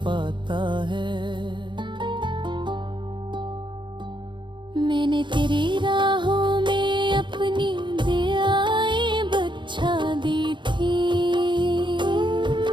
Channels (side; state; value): left; late; 0.23 ms